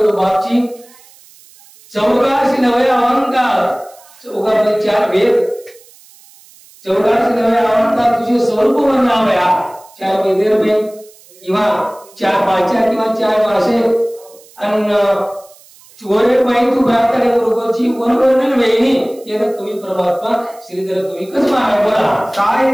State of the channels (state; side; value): noise; right; hiss, 26 dB below the sound